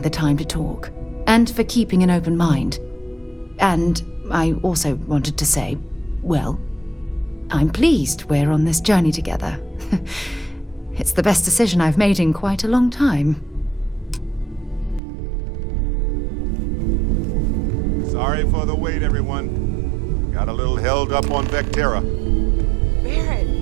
the time to talk, and for keeping an open mind. And I also wanted to say, well, I'm pleased we're on this journey together. It's the best decision I've made in quite a long time. Sorry for the wait, everyone. Got a little held up on Vectera. Barrett,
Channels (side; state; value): left; drops out; at 15.0 s